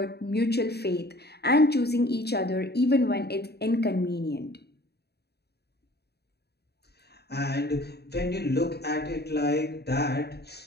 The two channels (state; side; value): late; right; 0.48 ms